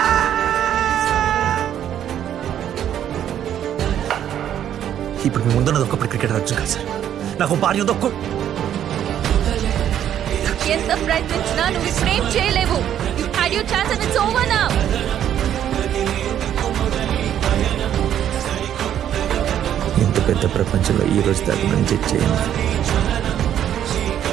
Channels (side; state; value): left; quieter; 10.3 dB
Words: ఇప్పుడు మీ ముందున్నది ఒకప్పుడు క్రికెట్ వచ్చు కదా సార్. నాకు భార్య ఉంది ఒక్క. ఎంత ప్రయత్నించినా నువ్వు ఫ్రేమ్ చేయలేవు. You had your chance and it's over now. ఇంత పెద్ద ప్రపంచంలో ఈ రోజు దాకా నేను చెక్ చేయను.